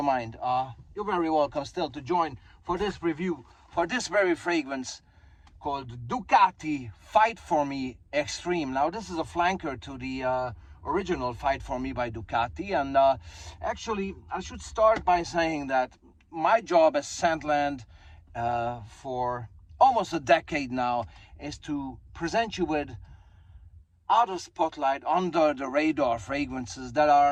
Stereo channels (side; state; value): both; identical; correlation 1.00